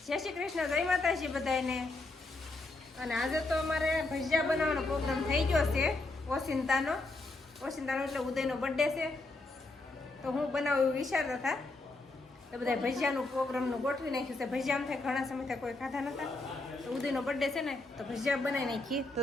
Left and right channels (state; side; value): quieter; right; 3.1 dB